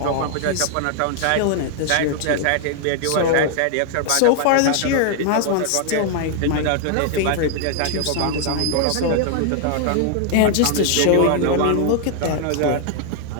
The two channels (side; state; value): both; different; correlation 0.00